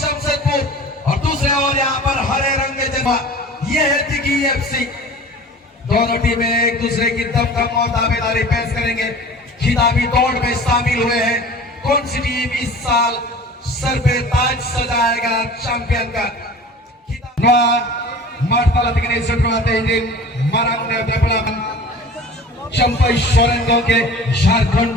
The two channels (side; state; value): both; normal; correlation 0.41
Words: और दूसरे ओर यहाँ पर हरे रंग के जर्सी ये है दिग्गी एफसी दोनों टीमें एक दूसरे की दमखम और दावेदारी पेश करेंगे खिताबी दौड़ में शामिल हुए हैं कौन सी टीम इस साल सर पे ताज सजाएगा चैंपियन का Martala tinggi setelah izin marangnya development sampai Sorengo के झारखंड